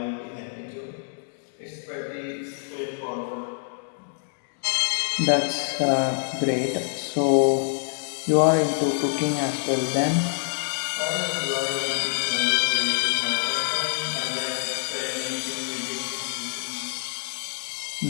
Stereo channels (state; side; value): silent; right; digital silence